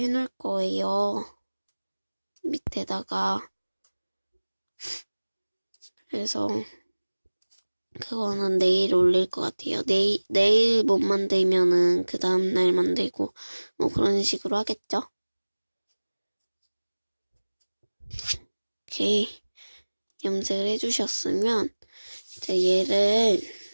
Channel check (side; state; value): both; inverted; correlation -1.00